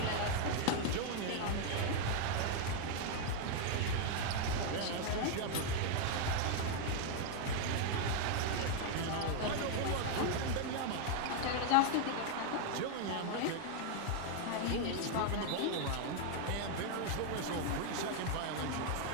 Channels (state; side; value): different; both; correlation 0.00